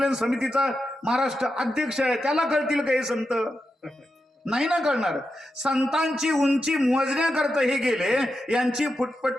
समितीचा महाराष्ट्र अध्यक्ष आहे, त्याला कळतील का हे संत? नाही ना कळणार. संतांची उंची मोजण्याकरता हे गेले, यांची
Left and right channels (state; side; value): normal; both; correlation 0.88